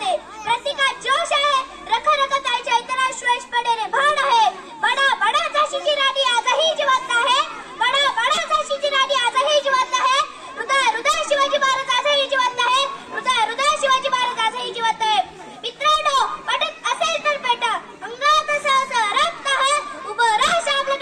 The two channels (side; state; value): both; identical; correlation 1.00